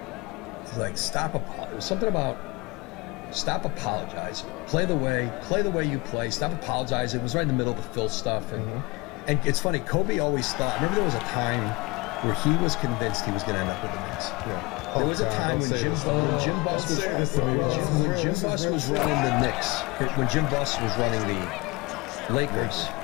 he's like, it was something about stop apologizing. Play the way you play. Stop apologizing. It was right in the middle of the Phil stuff. And it's funny, Kobe always thought, I remember there was a time where he was convinced he was going to end up with the Knicks. There was a time when Jim Buss was running the Knicks, when Jim Buss was running the Lakers.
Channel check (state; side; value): quieter; right; 24.8 dB